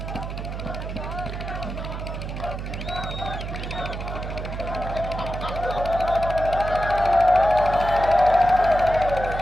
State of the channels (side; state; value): right; noise; hum, 6 dB below the sound